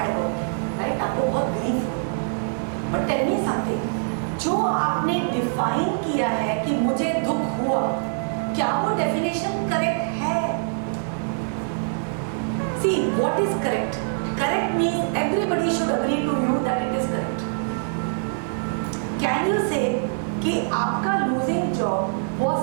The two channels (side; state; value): left; silent; digital silence